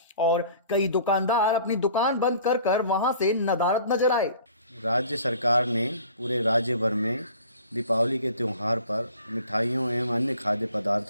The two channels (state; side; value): inverted; both; correlation -0.49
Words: और कई दुकानदार अपनी दुकान बंद कर वहां से नदारद नजर आए। राज्य सरकार ने पूरे राज्य भर में दीपावली के त्यौहार पर मिठाइयों एवं अन्य खाद्य